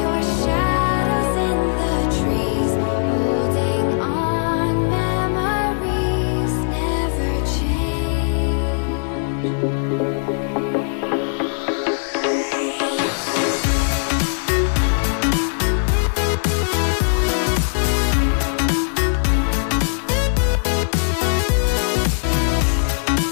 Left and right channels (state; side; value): silent; right; digital silence